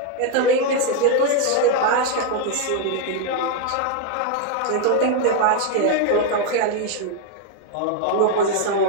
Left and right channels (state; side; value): different; both; correlation 0.01